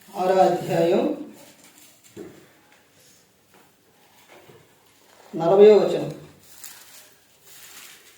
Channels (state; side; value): identical; both; correlation 1.00